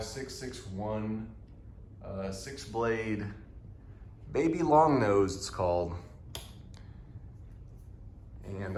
6-blade baby long nose, it's called.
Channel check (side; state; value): both; identical; correlation 1.00